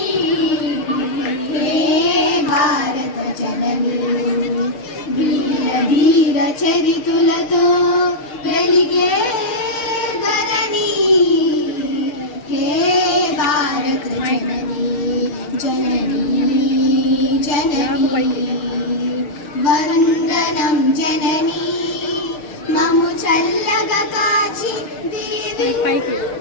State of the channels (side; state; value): right; late; 6.6 ms